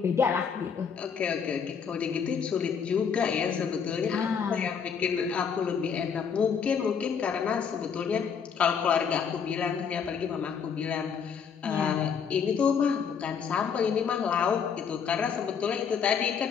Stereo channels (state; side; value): quieter; right; 6.7 dB